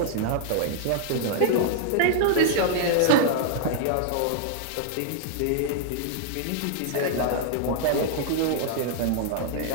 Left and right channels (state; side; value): different; both; correlation -0.01